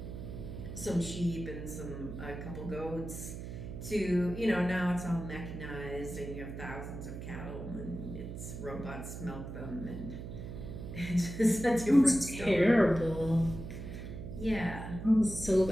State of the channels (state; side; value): noise; right; hum, 8 dB below the sound